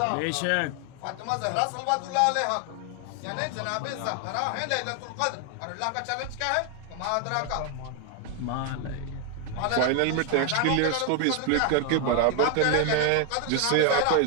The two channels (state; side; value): different; both; correlation 0.01